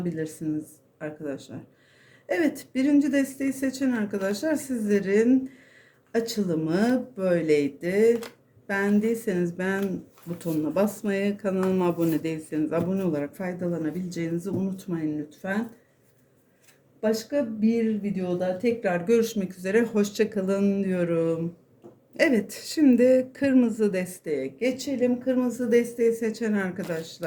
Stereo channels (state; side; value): identical; both; correlation 1.00